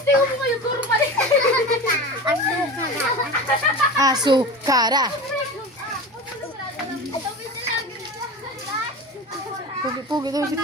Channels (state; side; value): normal; both; correlation 0.31